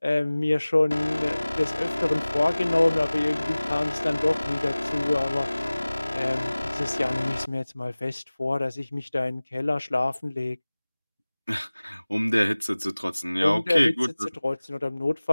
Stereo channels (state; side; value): inverted; both; correlation -0.99